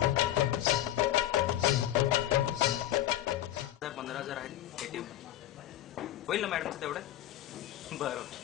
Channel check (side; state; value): right; quieter; 13.1 dB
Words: 15,000 आहेत ATM. होईल ना मॅडमचं तेवढं? बरं